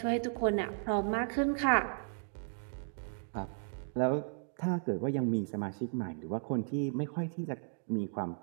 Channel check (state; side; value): silent; left; digital silence